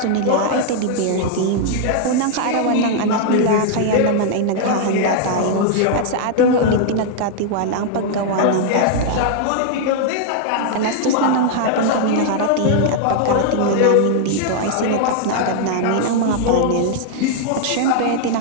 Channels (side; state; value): both; different; correlation 0.00